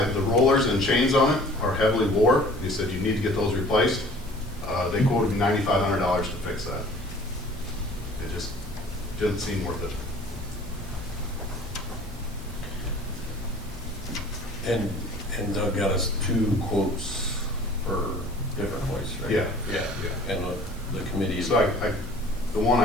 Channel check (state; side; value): normal; both; correlation 0.49